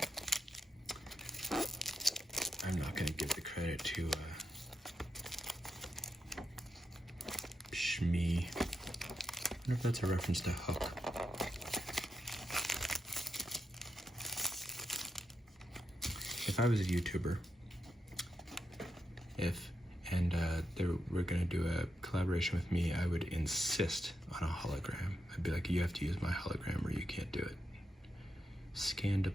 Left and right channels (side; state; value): both; normal; correlation 0.85